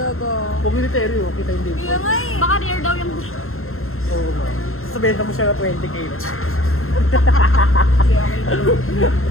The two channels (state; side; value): late; right; 0.62 ms